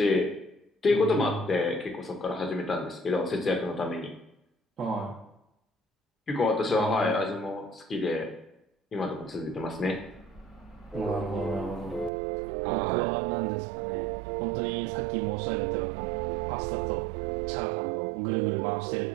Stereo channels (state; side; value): drops out; left; at 12.1 s